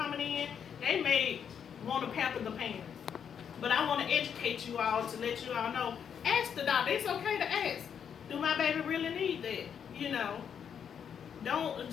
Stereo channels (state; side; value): quieter; right; 7.8 dB